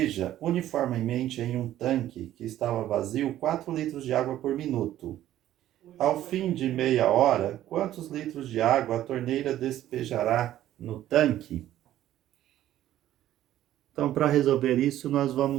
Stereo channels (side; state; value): left; quieter; 13.0 dB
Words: uniformemente em um tanque que estava vazio 4 litros de água por minuto. Ao fim de meia hora, quantos litros de água a torneira despejará no tanque? Então, para resolver isso, nós